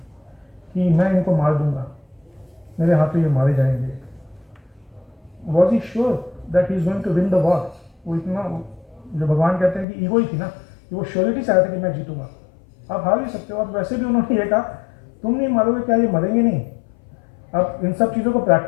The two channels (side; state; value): right; drops out; at 9.9 s